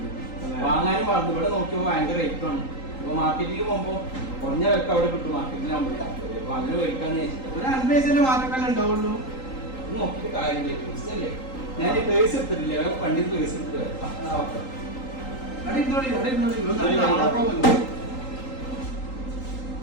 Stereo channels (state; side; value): late; right; 3.8 ms